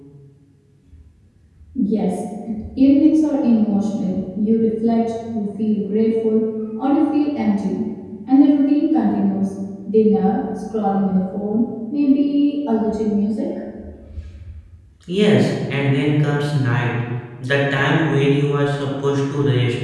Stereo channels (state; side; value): identical; both; correlation 1.00